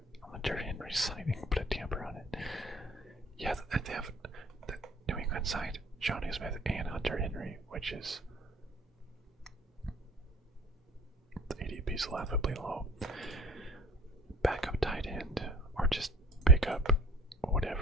on the Derrick Henry signing, put a tamper on it. Yeah, they have the New England signed Johnny Smith and Hunter Henry, which is the ADP's laughably low. Backup tight end, or just pick up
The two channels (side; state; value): both; normal; correlation 0.48